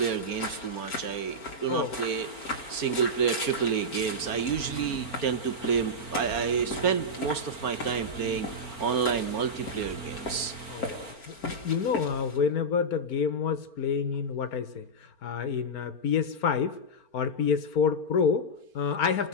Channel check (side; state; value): right; late; 4.4 ms